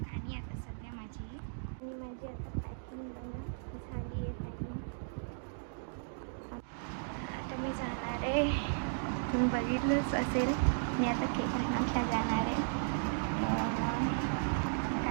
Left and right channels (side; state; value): left; silent; digital silence